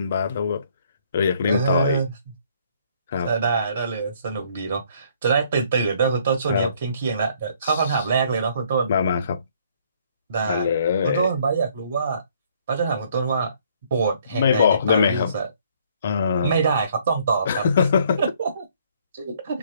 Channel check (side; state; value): both; inverted; correlation -0.63